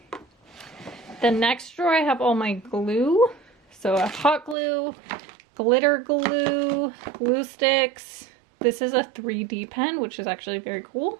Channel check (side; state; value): left; drops out; at 4.5 s